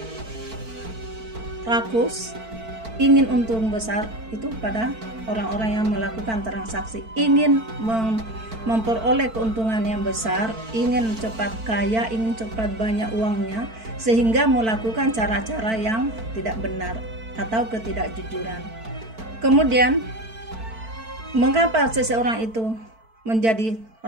rakus, ingin untung besar itu pada orang-orang yang melakukan transaksi, ingin memperoleh keuntungan yang besar, ingin cepat kaya, ingin cepat banyak uangnya, sehingga melakukan cara-cara yang tidak benar atau ketidakjujuran. Kemudian mengapa seseorang itu menjadi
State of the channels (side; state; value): left; late; 4.5 ms